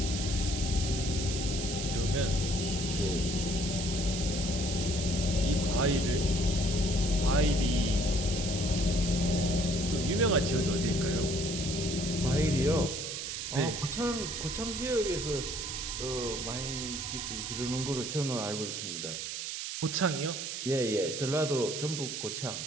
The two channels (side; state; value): right; noise; hiss, 5 dB below the sound